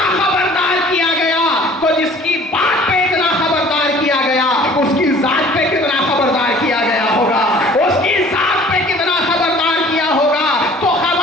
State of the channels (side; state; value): both; normal; correlation 0.50